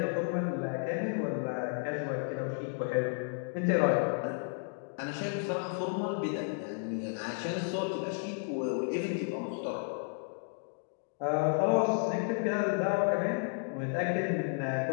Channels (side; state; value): right; silent; 56 dB below the other